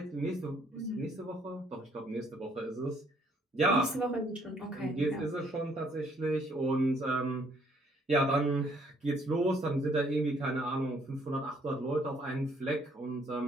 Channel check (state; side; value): normal; both; correlation 0.65